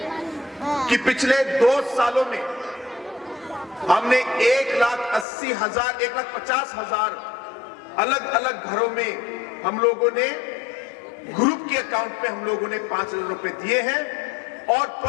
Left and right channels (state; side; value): drops out; right; at 5.2 s